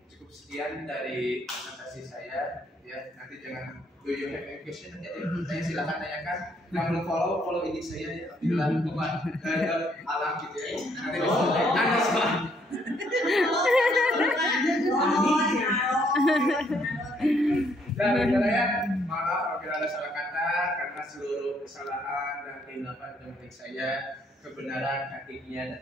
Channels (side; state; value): both; normal; correlation 0.69